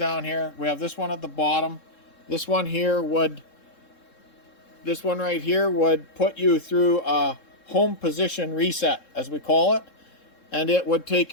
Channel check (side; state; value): right; late; 3.7 ms